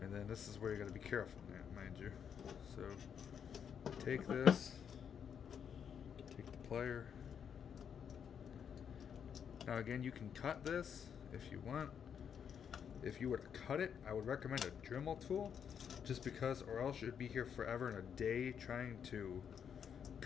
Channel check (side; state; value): right; quieter; 7.7 dB